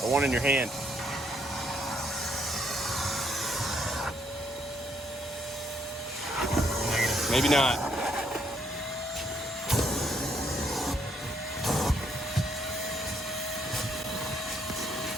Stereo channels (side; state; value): both; normal; correlation 0.71